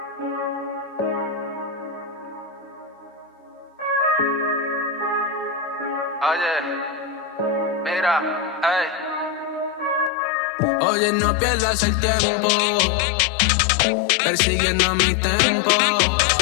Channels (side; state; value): right; drops out; at 10.1 s